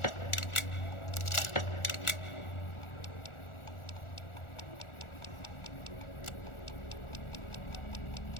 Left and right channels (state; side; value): late; right; 1.4 ms